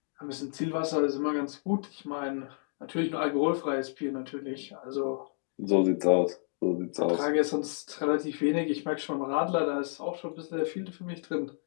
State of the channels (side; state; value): right; silent; 57 dB below the other